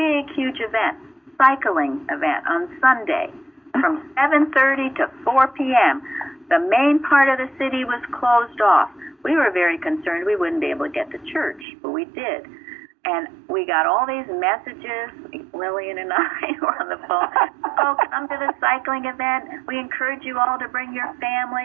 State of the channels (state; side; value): drops out; left; at 11.7 s